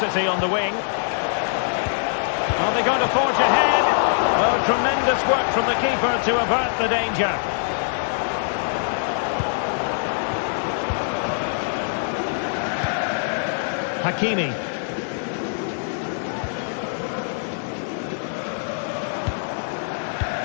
on the wing. Are they going to forge ahead? Oh, tremendous work from the keeper to avert the danger. Hakimi.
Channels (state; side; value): silent; right; digital silence